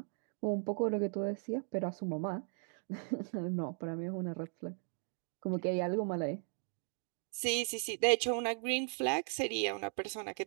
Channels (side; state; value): left; silent; 53 dB below the other